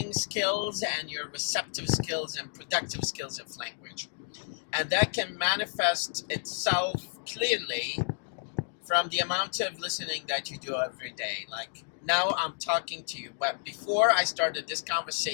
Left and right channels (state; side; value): silent; right; 57 dB below the other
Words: skills and your receptive skills and productive skills of language. And that can manifest itself clearly from the amount of listening that you do every day. Like now I'm talking to you, but before I started this